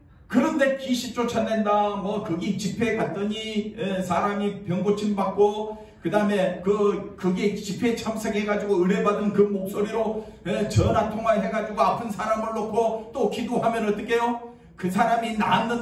그런데 귀신 쫓아낸다 뭐 거기 집회에 갔더니 사람이 병 고침 받고 그 다음에 거기에 집회에 참석해가지고 은혜 받은 그 목소리로 전화 통화해가지고 아픈 사람을 놓고 또 기도하면 어떻게 해요? 그 사람이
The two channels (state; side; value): identical; both; correlation 1.00